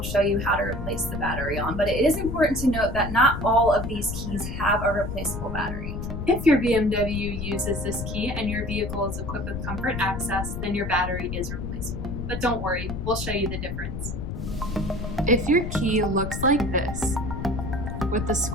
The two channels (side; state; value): left; noise; rumble, 5 dB below the sound